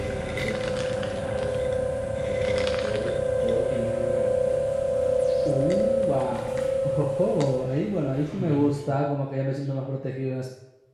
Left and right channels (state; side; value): identical; both; correlation 1.00